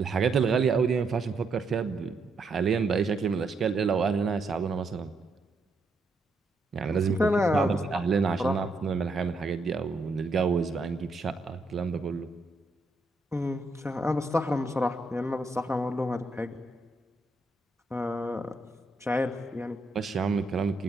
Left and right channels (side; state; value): left; quieter; 3.0 dB